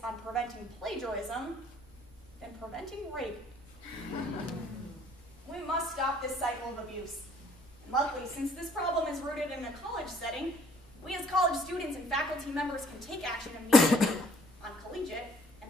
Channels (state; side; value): normal; both; correlation 0.59